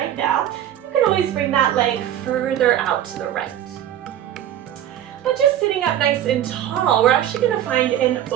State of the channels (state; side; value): quieter; left; 11.2 dB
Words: now, you can always bring that leg further out to the right. But just sitting up nice and tall, we're actually going to find an